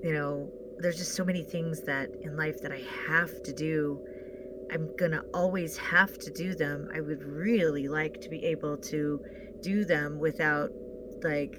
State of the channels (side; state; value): both; identical; correlation 1.00